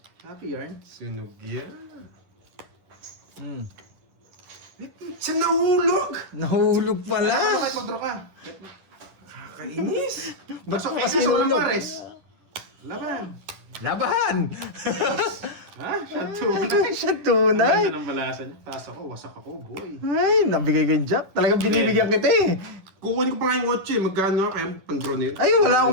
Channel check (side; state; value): left; late; 10 ms